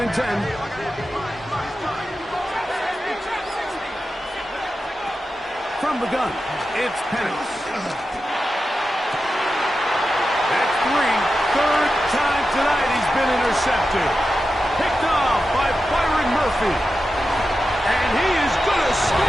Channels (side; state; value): both; normal; correlation 0.91